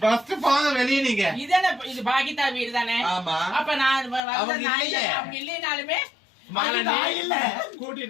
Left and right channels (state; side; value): drops out; right; at 4.2 s